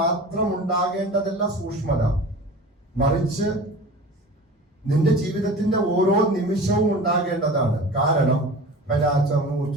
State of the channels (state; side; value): normal; both; correlation 0.37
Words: ഉണ്ടാകേണ്ടതല്ല സൂക്ഷ്മത. മറിച്ച് നിന്റെ ജീവിതത്തിന്റെ ഓരോ നിമിഷവും ഉണ്ടാകേണ്ടതാണ്. കാരണം